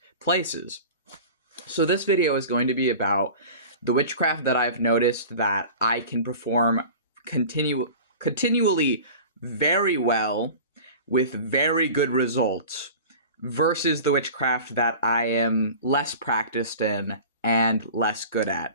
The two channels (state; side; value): inverted; both; correlation -0.38